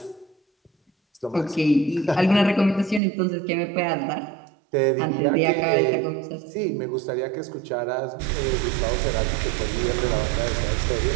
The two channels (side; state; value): left; drops out; at 3.0 s